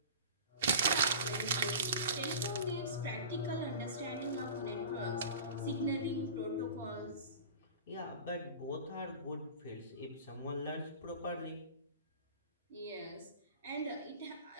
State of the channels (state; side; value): inverted; both; correlation -0.36